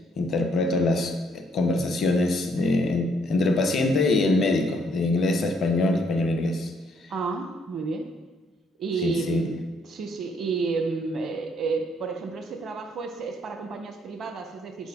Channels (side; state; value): both; normal; correlation 0.69